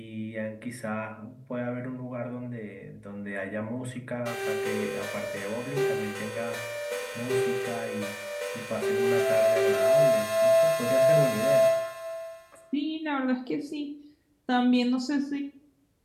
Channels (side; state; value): both; identical; correlation 1.00